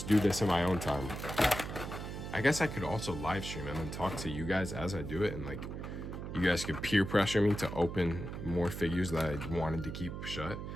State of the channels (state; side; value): noise; right; hum, 7 dB below the sound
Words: do this in my own time. I guess I could also live stream and then talk to you guys as I do it, and like you guys could peer pressure me to open more figures that I wanted to keep shut.